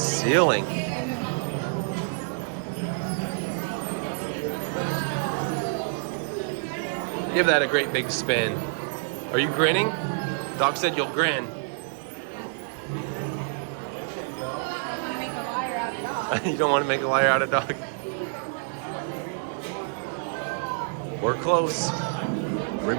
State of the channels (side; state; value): left; silent; digital silence